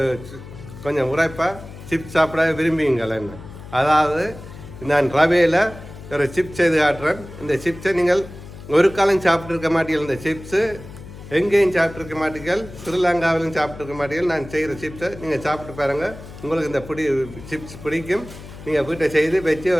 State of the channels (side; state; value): left; noise; hum, 15 dB below the sound